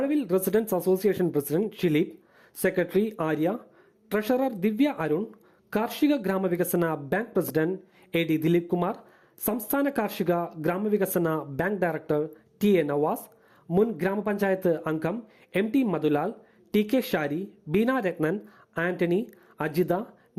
residence association president Shileep, secretary Arya, treasurer Divya Arun, കാർഷിക ഗ്രാമവികസന bank president AD Dileep Kumar, സംസ്ഥാന കാർഷിക ഗ്രാമവികസന ബാങ്ക് ഡയറക്ടർ TA നവാസ്, മുൻ ഗ്രാമപഞ്ചായത്ത് അംഗം MT മധുലാൽ, TK ഷാരി, ബീന രത്നൻ, ആന്റണി, അജിത,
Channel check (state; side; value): identical; both; correlation 1.00